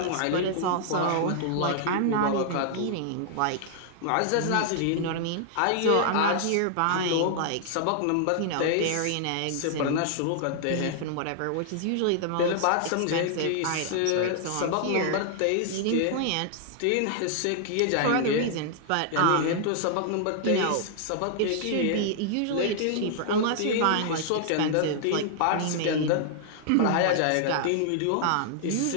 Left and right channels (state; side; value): different; both; correlation -0.01